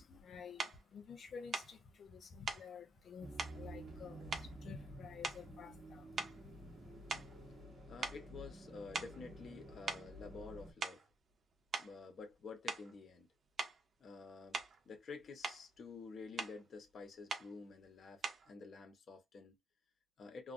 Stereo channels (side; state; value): both; normal; correlation 0.77